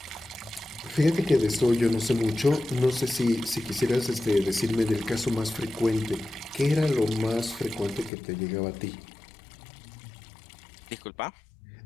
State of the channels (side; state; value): right; drops out; at 8.1 s